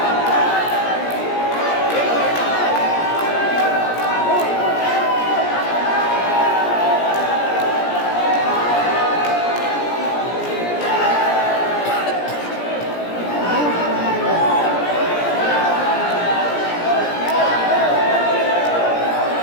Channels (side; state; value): right; late; 17 ms